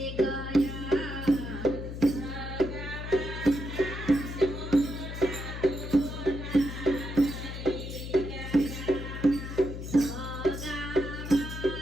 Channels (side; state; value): left; noise; hum, 7 dB below the sound